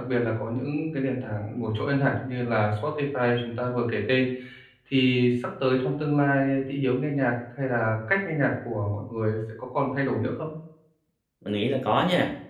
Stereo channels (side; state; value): both; identical; correlation 1.00